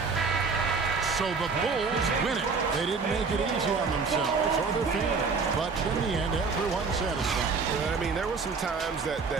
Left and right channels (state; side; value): quieter; left; 4.8 dB